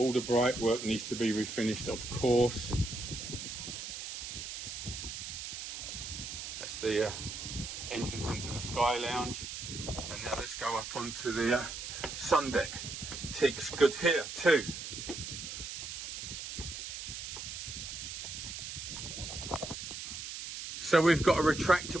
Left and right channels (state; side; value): noise; right; hiss, 7 dB below the sound